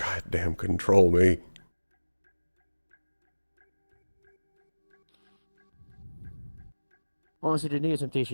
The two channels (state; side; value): inverted; both; correlation -1.00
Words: control me. Honestly, the near